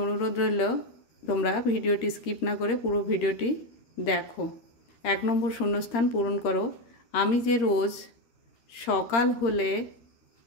অনুরোধ রইল তোমরা ভিডিওটি স্কিপ না করে পুরো ভিডিওটি দেখো। 1 নম্বর শূন্যস্থান পূরণ করো। আমি যে রোজ সকাল হলে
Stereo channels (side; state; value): right; late; 13 ms